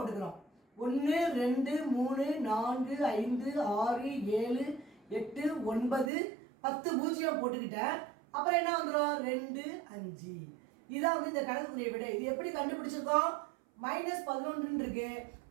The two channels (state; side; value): drops out; left; at 6.1 s